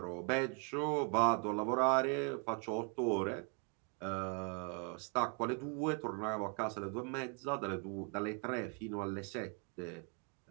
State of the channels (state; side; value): quieter; left; 34.7 dB